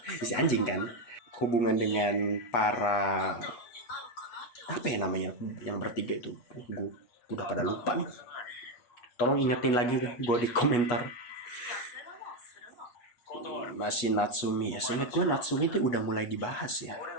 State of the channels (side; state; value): right; late; 8.3 ms